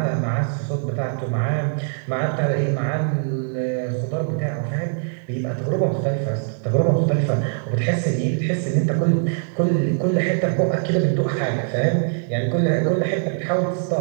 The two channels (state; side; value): silent; left; 57 dB below the other